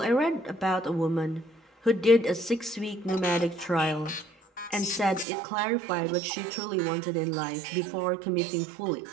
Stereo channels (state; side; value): drops out; left; at 5.2 s